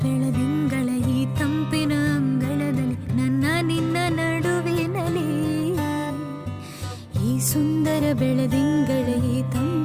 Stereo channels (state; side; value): identical; both; correlation 1.00